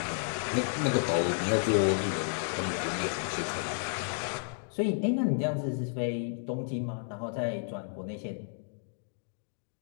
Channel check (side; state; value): right; silent; digital silence